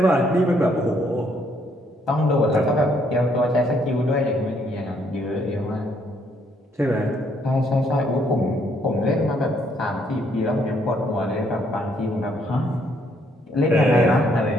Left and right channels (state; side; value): normal; both; correlation 0.69